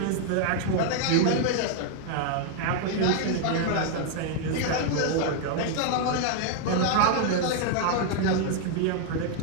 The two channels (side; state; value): both; different; correlation 0.00